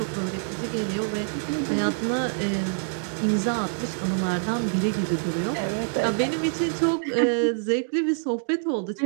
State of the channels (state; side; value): silent; left; digital silence